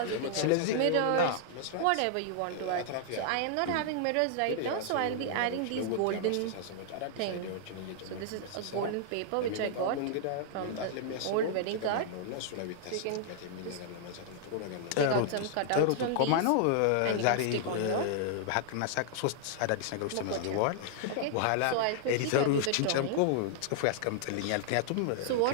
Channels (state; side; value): different; both; correlation -0.01